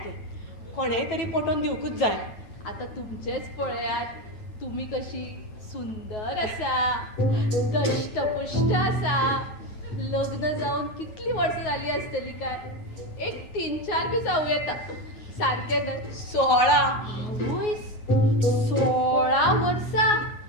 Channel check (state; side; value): late; right; 9.5 ms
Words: कोणेय तरी पटोवन दिवकूच जाय. आता तुमचेच पळयात, तुम्ही कशी सुंदर आसा, दष्टपुष्ट आसा. लग्न जाऊन कितली वर्ष झाली असतली काय? एक 3-4 बी जाऊ येता. सारखे ना? 16 वर्षा.